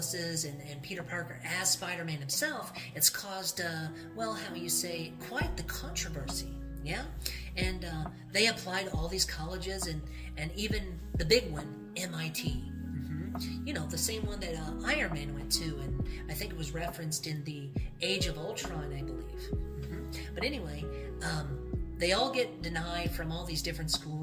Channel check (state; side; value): identical; both; correlation 1.00